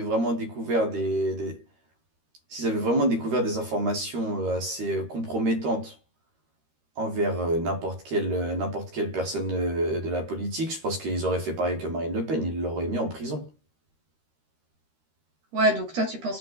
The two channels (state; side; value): late; left; 13 ms